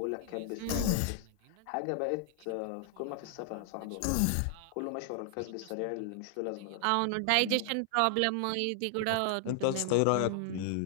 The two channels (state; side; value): different; both; correlation 0.00